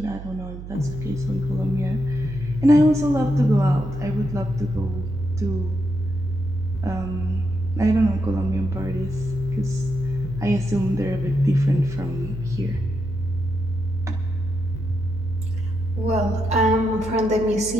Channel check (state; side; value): noise; right; hum, 11 dB below the sound